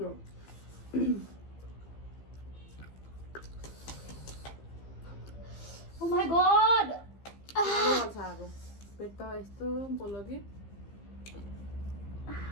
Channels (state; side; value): late; right; 15 ms